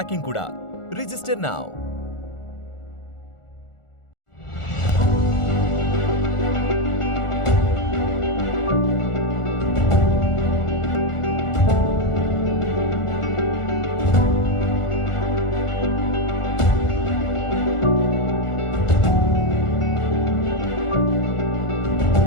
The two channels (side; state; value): right; late; 1.4 ms